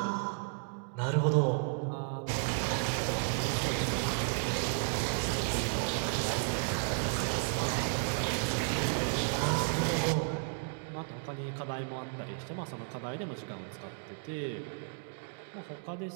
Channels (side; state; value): left; silent; 55 dB below the other